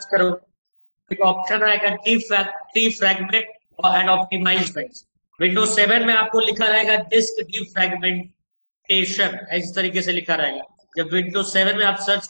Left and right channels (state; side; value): inverted; both; correlation -1.00